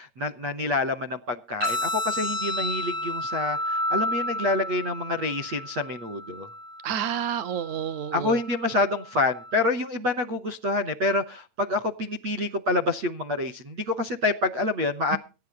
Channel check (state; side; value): late; left; 8.8 ms